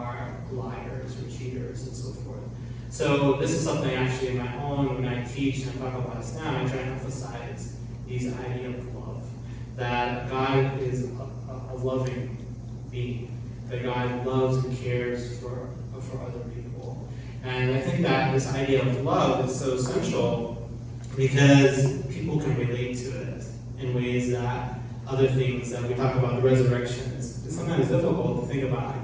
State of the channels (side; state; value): both; identical; correlation 1.00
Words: liars or cheaters and so forth. So this is something actually in my own, when I teach and I talk about Islam, I try to emphasize these idea of love. That God is a loving being. That God loves and cares for other people. And I think that this idea of love is so essential because people can relate to it in ways that other things that we talk about, the resurrection, it's sometimes difficult to think about